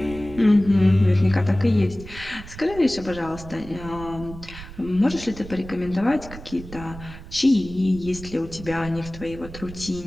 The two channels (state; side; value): noise; right; rumble, 14 dB below the sound